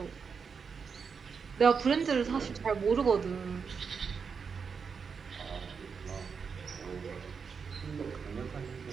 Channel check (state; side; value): quieter; left; 5.8 dB